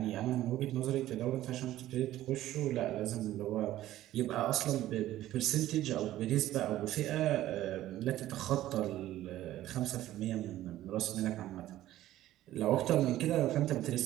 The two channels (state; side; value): quieter; left; 14.2 dB